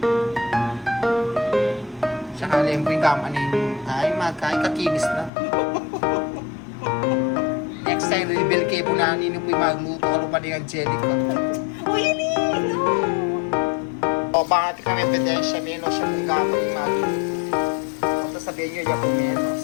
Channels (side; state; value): right; drops out; at 5.3 s